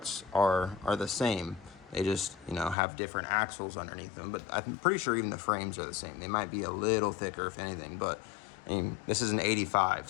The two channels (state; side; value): drops out; right; at 2.8 s